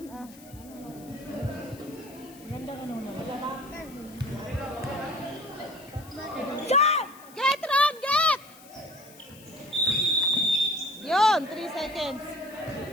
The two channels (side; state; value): left; noise; hiss, 22 dB below the sound